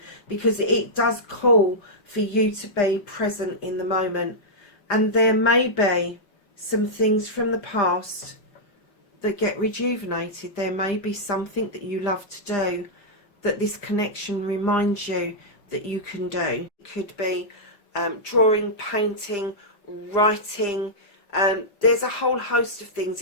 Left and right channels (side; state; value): right; late; 5.0 ms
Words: because it does call for you to be present in the moment. And there may be some things from the past that get rejuvenated. There may be something that you love to do that this connection reminds you that you can do. It could be drawing, painting, writing. There's a whole host of things.